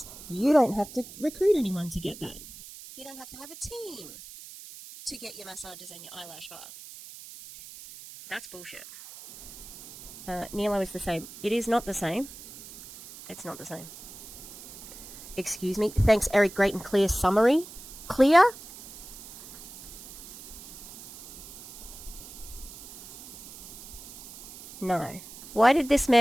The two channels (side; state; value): right; noise; hiss, 15 dB below the sound